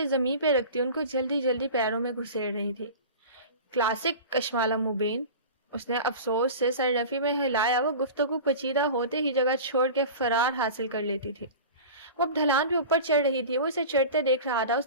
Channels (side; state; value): both; inverted; correlation -0.35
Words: زمین پہ رکھتی ان کو جلدی جلدی پیروں میں گھسیڑ رہی تھی. کلاسک کشمالہ مبین. اس نے افسوس سے سر رفی میں ہلایا. وہ گفتگو پیچیدہ ہوتے ہی جگہ چھوڑ کے فرار حاصل کر لیتی تھی. وہ اب ڈھلان پہ اوپر چڑھ رہی تھی. وہ اسے چڑھتے دیکھ رہا تھا.